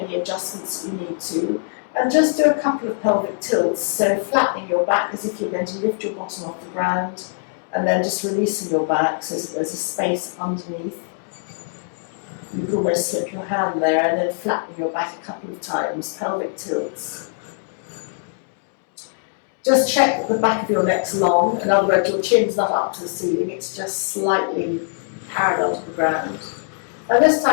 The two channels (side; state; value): right; silent; 64 dB below the other